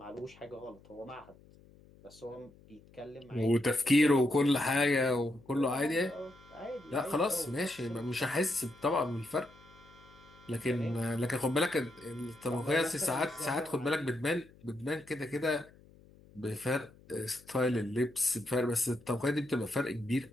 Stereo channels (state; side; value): noise; left; hum, 25 dB below the sound